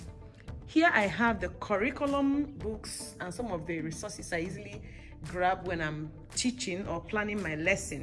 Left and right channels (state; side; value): identical; both; correlation 1.00